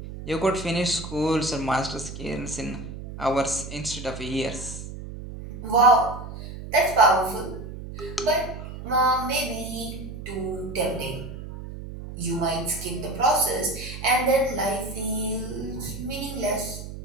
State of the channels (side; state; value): right; noise; hum, 10 dB below the sound